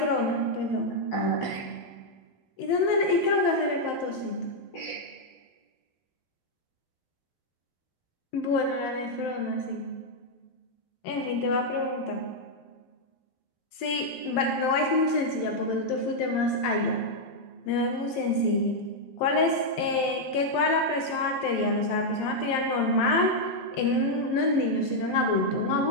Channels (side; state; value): right; late; 11 ms